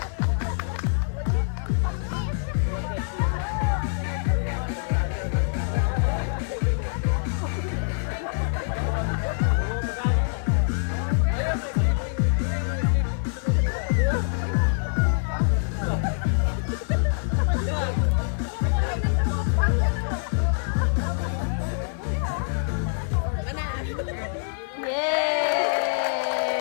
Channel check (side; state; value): right; silent; digital silence